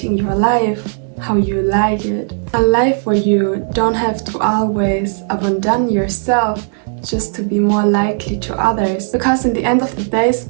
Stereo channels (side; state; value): left; silent; digital silence